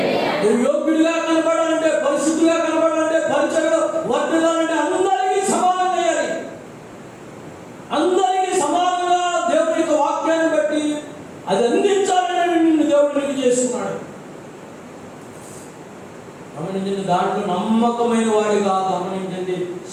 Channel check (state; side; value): identical; both; correlation 1.00